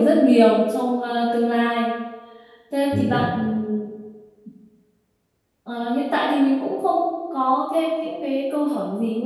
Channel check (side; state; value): both; identical; correlation 1.00